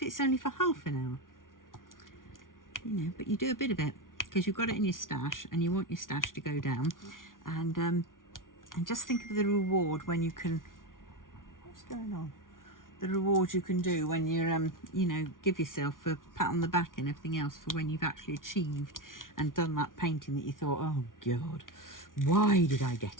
it's only for half an hour, you know, but you do a bit of it because you've got it in your stash and you want your stash to go down. And just think of the reward when you can, what's going on? The reward you can do when you're, you know, give yourself a pat on the back and everything else for when you've actually achieved and done that painting that you thought, oh God, why did I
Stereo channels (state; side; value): late; right; 0.89 ms